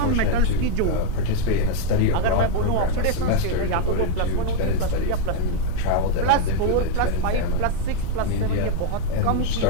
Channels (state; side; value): different; both; correlation 0.00